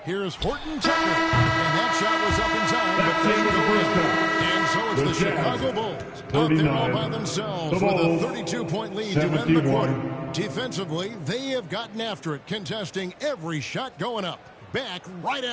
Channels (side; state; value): both; identical; correlation 1.00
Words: Here's Horton Tucker. And that shot was up in time. But they go in. And so it's the Chicago Bulls out there all by themselves with a 32-point lead to end the quarter. Defensively, they have gotten after it, contesting every shot going up. Back right